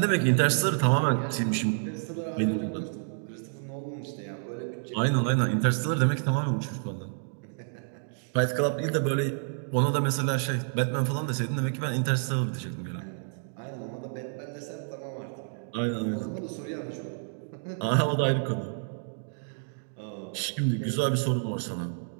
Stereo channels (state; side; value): silent; left; digital silence